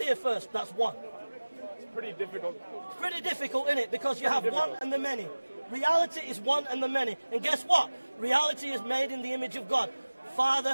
here first that's one. It's pretty difficult. It's pretty difficult, isn't it? Because you have one and the many. Reality is one and the many. And guess what? Reality is made in the image of God.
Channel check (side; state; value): both; inverted; correlation -1.00